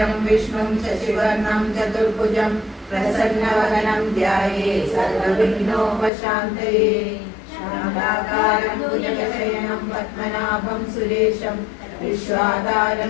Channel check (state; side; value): drops out; right; at 6.1 s